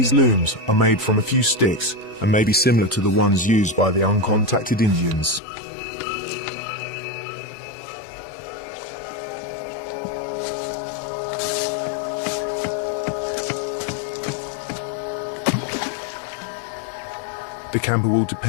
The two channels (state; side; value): drops out; right; at 5.4 s